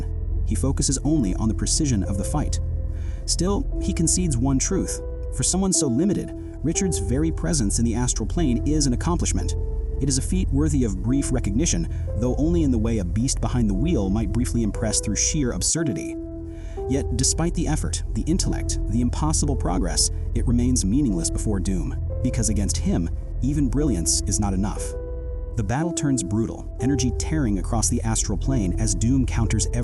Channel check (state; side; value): identical; both; correlation 1.00